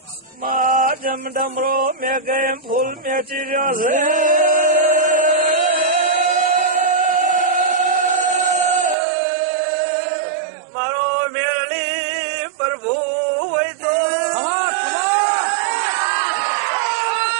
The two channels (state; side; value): drops out; left; at 9.0 s